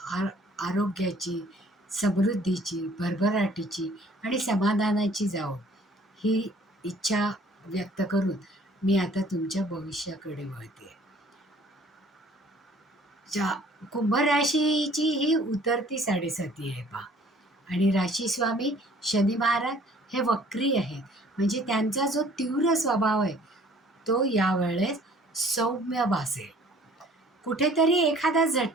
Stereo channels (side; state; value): both; normal; correlation 0.55